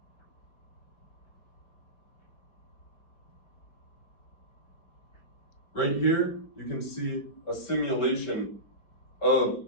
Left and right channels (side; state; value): right; late; 4.9 ms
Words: Right here, you can see a simulation of